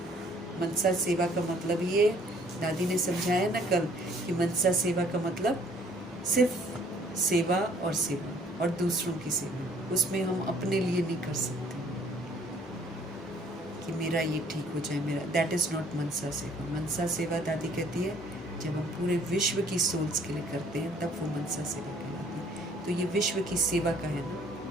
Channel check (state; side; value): normal; both; correlation 0.59